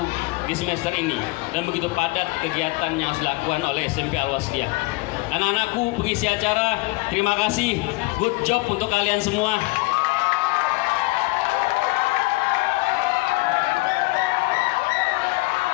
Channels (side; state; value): right; quieter; 23.8 dB